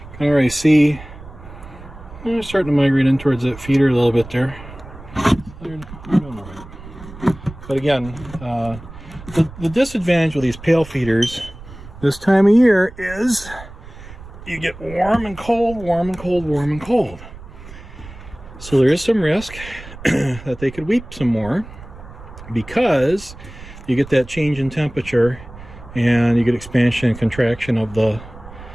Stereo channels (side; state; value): right; noise; rumble, 16 dB below the sound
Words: Can already see they're starting to migrate in towards that feeder a little bit there. They're doing all right. But again, the disadvantage with these pail feeders this time of year is you get warm and cold, warm and cold, warm and cold. So there is some risk that they could weep some more because you get that change in temperature and you get expansion and contraction of the